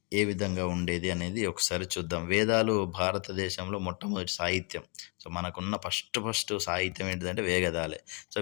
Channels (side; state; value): right; quieter; 33.4 dB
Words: ఏ విధంగా ఉండేది అనేది ఒకసారి చూద్దాం. వేదాలు భారతదేశంలో మొట్టమొదటి సాహిత్యం. సో మనకున్న ఫస్ట్ సాహిత్యం ఏంటిదంటే వేదాలే. సో